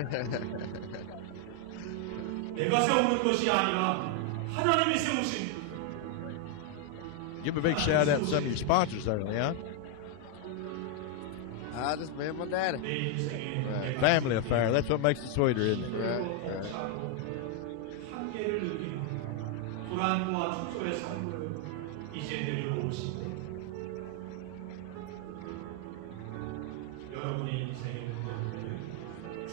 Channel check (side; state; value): both; different; correlation 0.00